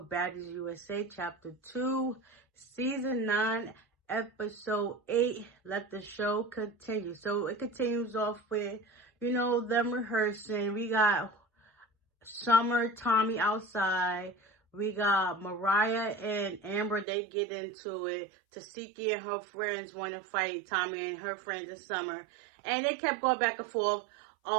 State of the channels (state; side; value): drops out; left; at 17.1 s